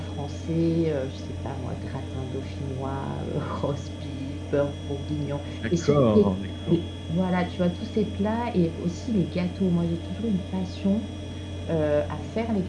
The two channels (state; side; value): identical; both; correlation 1.00